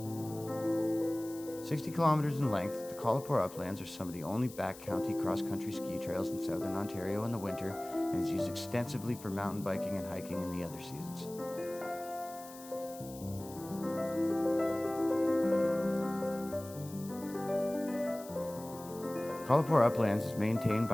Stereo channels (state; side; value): noise; left; hiss, 17 dB below the sound